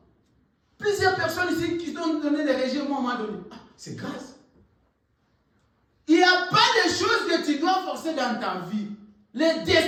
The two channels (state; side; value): identical; both; correlation 1.00